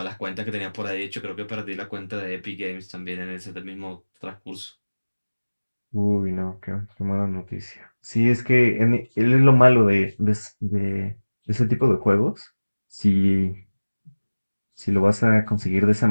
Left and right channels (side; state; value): both; inverted; correlation -1.00